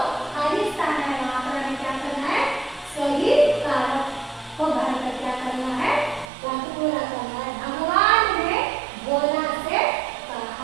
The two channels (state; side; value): drops out; left; at 6.3 s